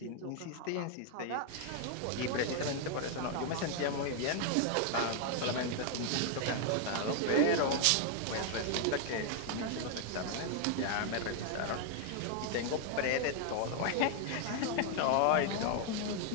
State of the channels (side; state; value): both; different; correlation 0.00